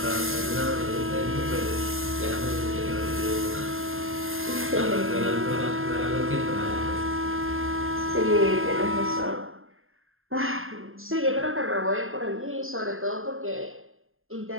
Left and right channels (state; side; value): late; left; 0.60 ms